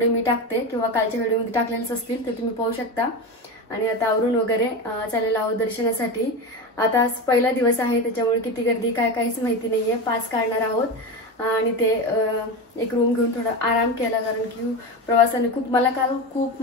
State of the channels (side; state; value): both; normal; correlation 0.21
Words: मी टाकते किंवा कालच्या व्हिडिओमध्ये टाकलेलेच असतील, तर तुम्ही पाहू शकता। आणि आता आवरून वगैरे चाललेलो आहोत दर्शनासाठी। आता आज पहिला दिवस आहे, त्याच्यामुळे किती गर्दी काय काहीच माहिती नाहीये। पास काढणार आहोत आणि ते एक रूम घेऊन थोडा आराम केला, कारण की प्रवासाने मला काल